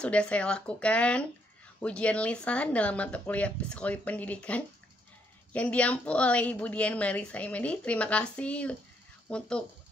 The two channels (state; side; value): normal; both; correlation 0.73